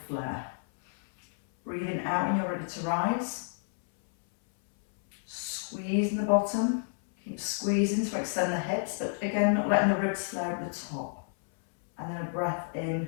flare. Breathing out when you're ready to rise. Squeeze in the bottom. Keep squeezing to extend the hips, but again, not letting the ribs flare at the top. And then a breath in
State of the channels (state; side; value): silent; right; 58 dB below the other